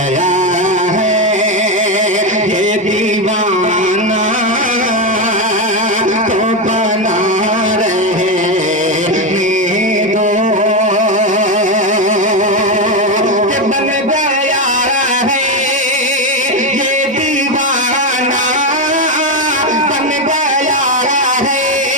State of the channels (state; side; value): normal; both; correlation 0.10